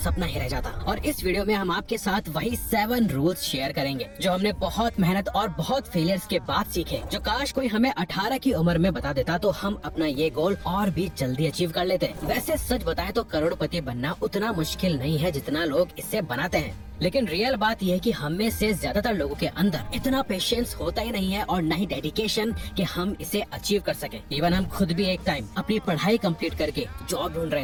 ही रह जाता। और इस वीडियो में हम आपके साथ वही 7 रूल्स शेयर करेंगे जो हमने बहुत मेहनत और बहुत फेलियर्स के बाद सीखे, जो काश कोई हमें 18 की उम्र में बता देता तो हम अपना ये गोल और भी जल्दी अचीव कर लेते। वैसे सच बताएं तो करोड़पति बनना उतना मुश्किल नहीं है जितना लोग इसे बनाते हैं, लेकिन रियल बात यह है कि हम में से ज्यादातर लोगों के अंदर इतना पेशेंस होता ही नहीं है और न ही डेडिकेशन कि हम इसे अचीव कर सके। इवन हम खुद भी एक टाइम अपनी पढ़ाई कंप्लीट करके जॉब ढूंढ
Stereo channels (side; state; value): both; identical; correlation 1.00